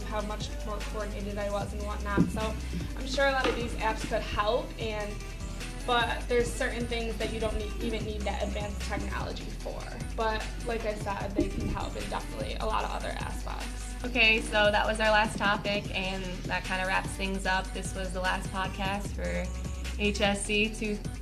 how much more coordinated I was and whatnot. So I'm sure a lot of these apps could help, but there's certain things that you don't even need that advanced technology for. But like I said, they can help in definitely a lot of other aspects. Okay, so that was our last topic, and that kind of wraps things up. This was the last podcast for HSC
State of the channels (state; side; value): identical; both; correlation 1.00